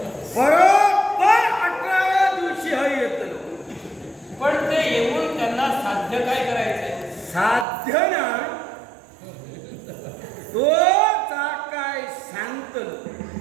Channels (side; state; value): left; drops out; at 7.7 s